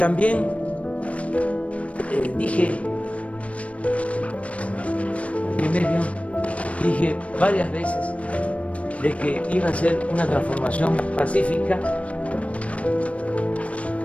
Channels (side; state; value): right; late; 0.064 ms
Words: dije varias veces de que iba a ser una transformación pacífica,